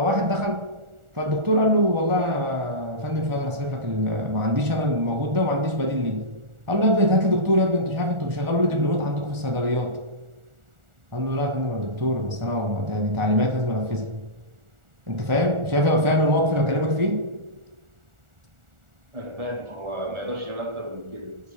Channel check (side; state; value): left; late; 1.4 ms